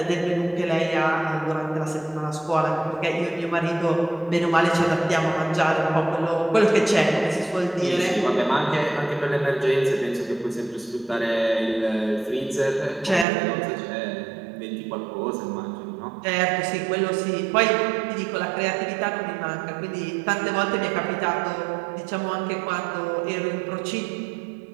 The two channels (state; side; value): drops out; left; at 13.2 s